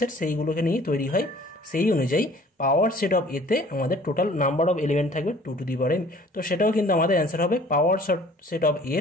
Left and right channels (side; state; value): both; normal; correlation 0.52